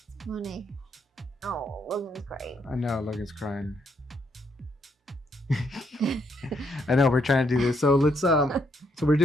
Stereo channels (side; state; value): both; normal; correlation 0.74